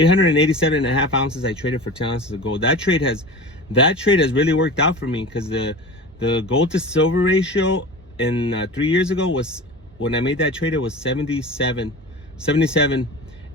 and a half ounces. I traded for 10 ounces of gold. That trade has really worked out for me, because the gold to silver ratio in 3 years ago was, when I made that trade, it was 77,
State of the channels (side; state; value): both; normal; correlation 0.33